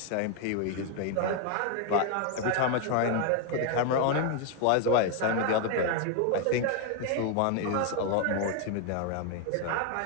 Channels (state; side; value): different; both; correlation 0.01